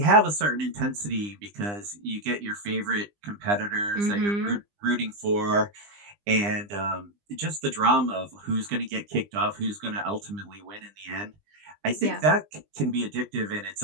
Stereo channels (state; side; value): late; left; 20 ms